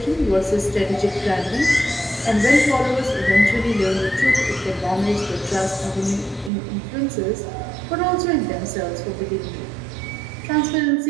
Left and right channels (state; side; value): drops out; left; at 6.5 s